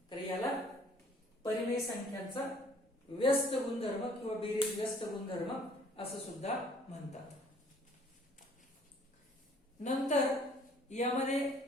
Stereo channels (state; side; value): normal; both; correlation 0.57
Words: तर याला परिमेय संख्यांचा व्यस्त गुणधर्म किंवा बेरीज व्यस्त गुणधर्म असं सुद्धा म्हणतात. नंतर यामध्ये